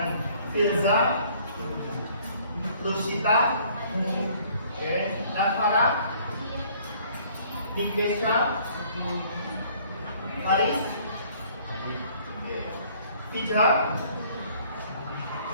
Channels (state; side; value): inverted; both; correlation -0.58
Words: Firza? Lusita? Oke. Nafara? Nikesha? Haris? Tija?